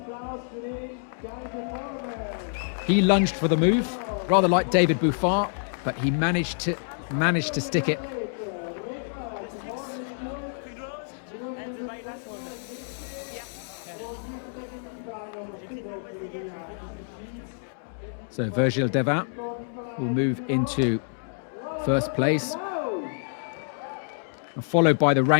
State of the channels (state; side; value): silent; right; digital silence